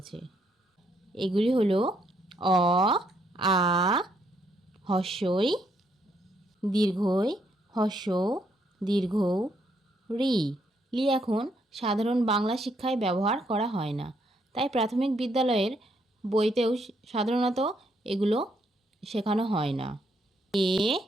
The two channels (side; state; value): both; normal; correlation 0.73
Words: এগুলি হলো অ, আ, হস্যই, দীর্ঘই, হস্যৌ, দীর্ঘৌ, রি। লি এখন সাধারণ বাংলা শিক্ষায় ব্যবহার করা হয় না, তাই প্রাথমিক বিদ্যালয়ের বইতেও সাধারণত এগুলো শেখানো হয় না। এ,